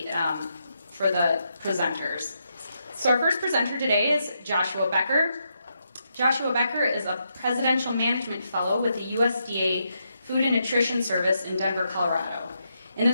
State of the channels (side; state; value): both; inverted; correlation -0.81